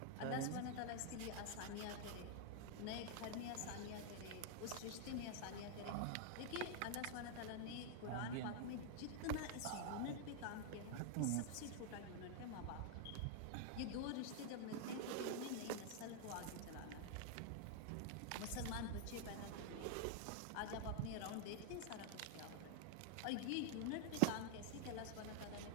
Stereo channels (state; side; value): different; both; correlation 0.00